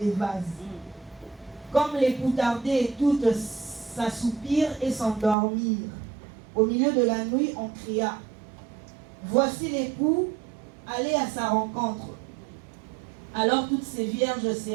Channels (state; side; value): drops out; left; at 5.4 s